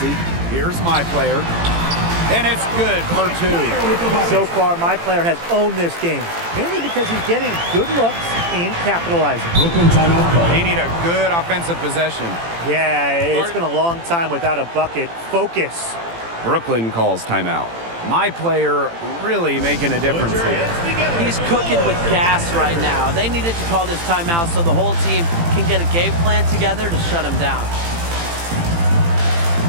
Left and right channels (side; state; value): left; late; 18 ms